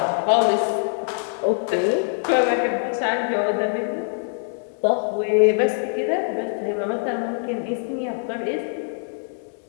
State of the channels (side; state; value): right; silent; 63 dB below the other